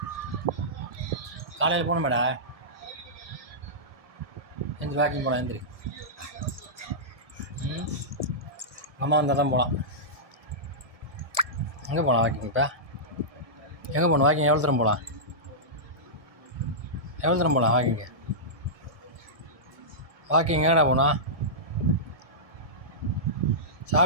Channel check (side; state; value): left; late; 1.7 ms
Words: காலையில் போகணுமேடா. எந்திரி வாக்கிங் போகலாம். எந்திரி. அம்மா வந்தால் தான் போகலாம். எங்கே போகலாம் வாக்கிங்ப்பா? எங்கே போகணும் வாக்கிங்? எவ்வளோ தூரம் போகலாம்? எவ்வளோ தூரம் போகலாம் வாக்கிங்கு? வாக்கிங் எங்கடா போகணும்?